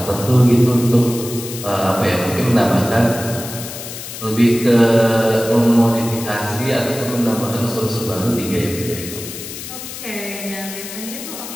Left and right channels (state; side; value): noise; left; hiss, 10 dB below the sound